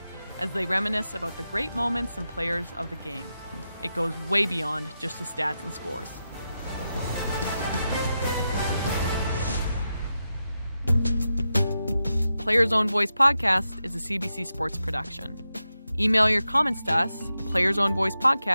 as they reminisce about the great moments and players of the game. It goes way beyond just the stats and scores. Player's Own Voice podcast is a CBC Sports production. Email your comments to us,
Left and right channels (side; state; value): both; inverted; correlation -0.89